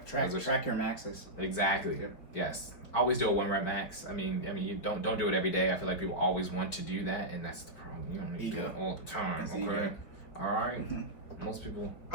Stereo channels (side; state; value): right; late; 4.5 ms